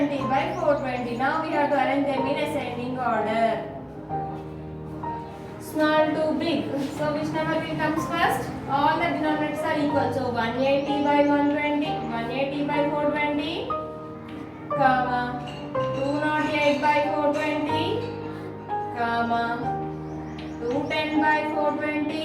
by 420. Now we have to arrange them in ascending order. Small to big. So which number will comes first? All the denominators are equal. So 180 by 120, 180 by 420, comma 208 by 420, comma 210 by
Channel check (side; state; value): both; identical; correlation 1.00